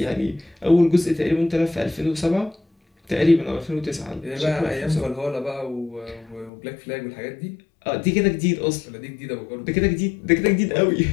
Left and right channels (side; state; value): right; drops out; at 6.5 s